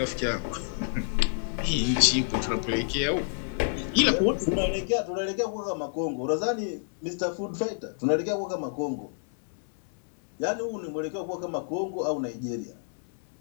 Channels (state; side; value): silent; right; digital silence